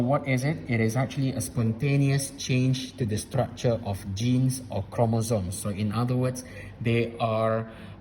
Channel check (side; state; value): both; identical; correlation 1.00